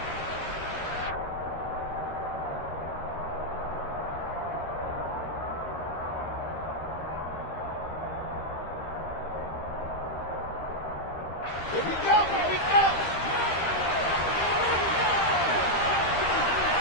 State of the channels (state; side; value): late; right; 13 ms